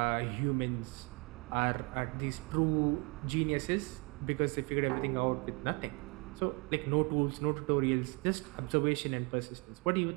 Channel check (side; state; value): left; quieter; 30.1 dB